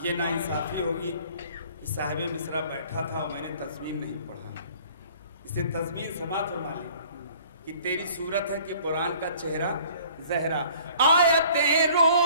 یہ ناانصافی ہوگی کہ صاحب مصرع بیٹھا تھا اور میں نے تضمین نہیں پڑھا، اسے تضمین سماعت فرما لی کہ تیری صورت ہے کہ قرآن کا چہرہ زہرا، آیتیں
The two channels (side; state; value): both; inverted; correlation -0.52